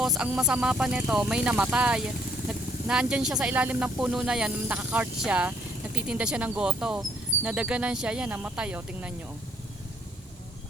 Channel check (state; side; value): normal; both; correlation 0.66